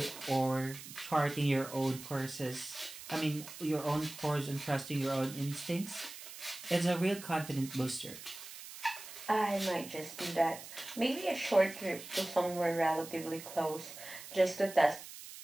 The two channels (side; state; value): right; noise; hiss, 13 dB below the sound